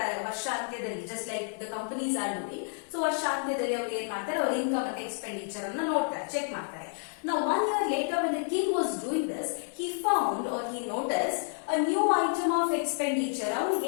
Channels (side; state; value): right; silent; 58 dB below the other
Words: ವರ್ಷಾಂತ್ಯದಲ್ಲಿ, just like the companies are doing, so ವರ್ಷಾಂತ್ಯದಲ್ಲಿ ಅವರು ಏನ್ ಮಾಡ್ತಾರೆ, ಅವ್ರ ಇನ್ಕಮ್ ಮತ್ತೆ ಎಕ್ಸ್ಪೆಂಡಿಚರ್ ಅನ್ನ ನೋಡ್ತಾರೆ, ಚೆಕ್ ಮಾಡ್ತಾರೆ. Now 1 year later, when the king was doing this, he found or he noticed a new item of expenditure.